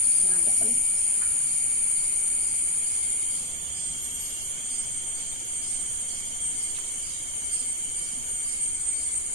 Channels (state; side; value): normal; both; correlation 0.11